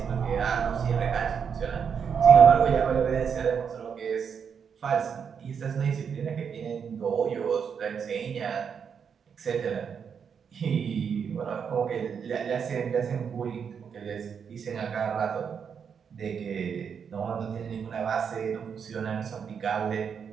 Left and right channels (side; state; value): left; quieter; 6.9 dB